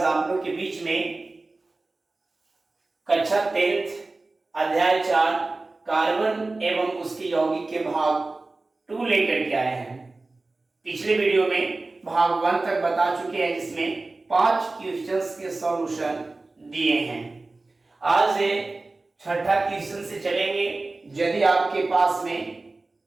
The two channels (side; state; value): left; quieter; 3.3 dB